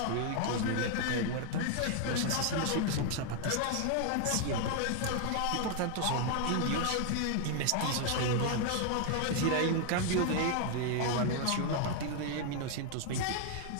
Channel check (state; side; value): different; both; correlation 0.00